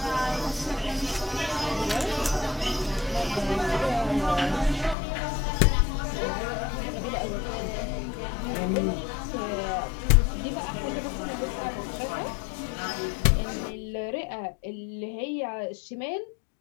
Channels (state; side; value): drops out; right; at 5.0 s